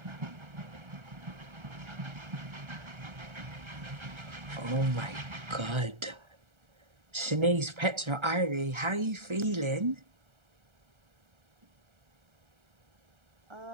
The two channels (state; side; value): late; left; 1.3 ms